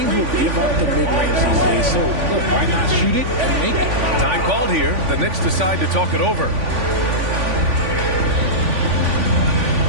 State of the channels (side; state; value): left; late; 3.5 ms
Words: will give up the mid-range these days, so look, why not shoot it and make it? Time called here. The Knicks decide to talk it over.